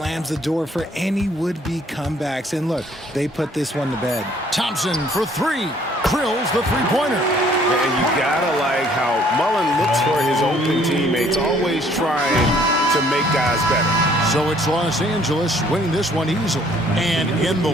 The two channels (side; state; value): both; normal; correlation 0.60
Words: the door for any would-be comebacks. And look, they put this one to bed. Thompson for three. Drills the three-pointer. And you gotta like how Mullen looks for his open teammates, always trying to make guys better. So it's Los Angeles winning this one easily. And in the